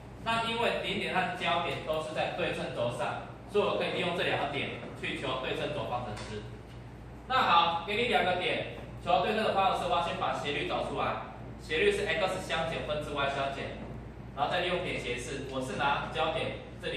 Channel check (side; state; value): both; identical; correlation 1.00